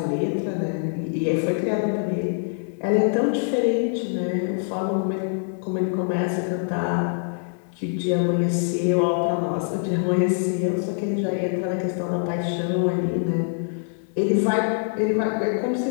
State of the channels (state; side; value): silent; right; 62 dB below the other